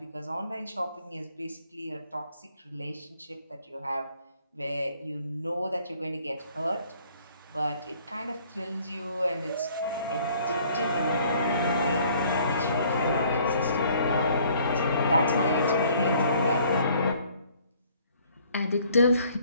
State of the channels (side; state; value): both; inverted; correlation -0.59